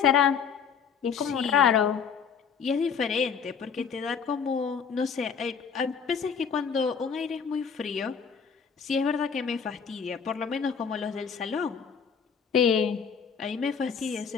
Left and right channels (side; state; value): right; quieter; 6.6 dB